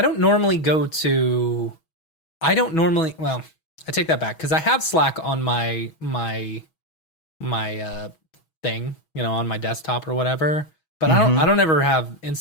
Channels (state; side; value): late; right; 6.2 ms